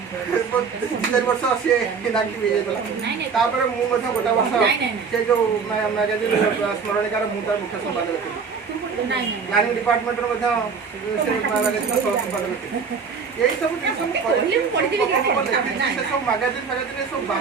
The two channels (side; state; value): left; quieter; 5.6 dB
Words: 2-4 ବର୍ଷ ସିଏ ଇନାକ୍ଟିଭ୍ ହେଇଯାଇଥିଲା ତାପରେ ମୁଁ ମଧ୍ୟ ଗୋଟେ ବର୍ଷ ସେ ଯେଉଁ ମ୍ୟାଗାଜିନ୍ ସ୍ମରଣିକାର ମୁଁ ତାର ମୁଖ୍ୟ ସମ୍ପାଦକ ଥିଲି ପ୍ଲାନିଂ ଡିପାର୍ଟମେଣ୍ଟର ମଧ୍ୟ ସେ ମ୍ୟାଗାଜିନ୍ର ସହ ସମ୍ପାଦକ ଥିଲେ। ଏଇ ସବୁ ଜିନିଷ ମୁଁ କରିଛି, ସେ ସବୁ ମ୍ୟାଗାଜିନ୍ ସବୁ